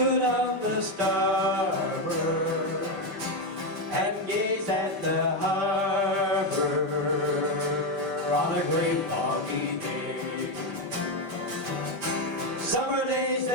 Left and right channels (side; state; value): left; late; 5.0 ms